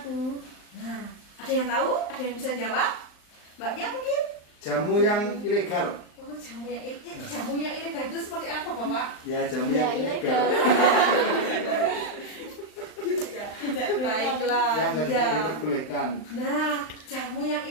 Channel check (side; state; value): right; late; 39 ms